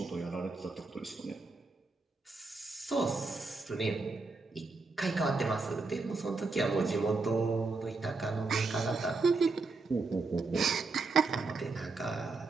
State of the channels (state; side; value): quieter; left; 3.9 dB